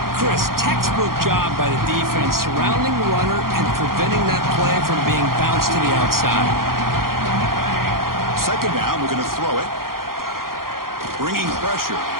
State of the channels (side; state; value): left; late; 0.92 ms